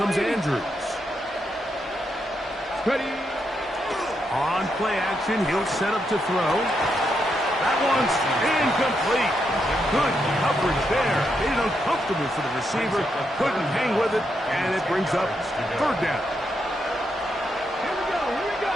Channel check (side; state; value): both; normal; correlation 0.81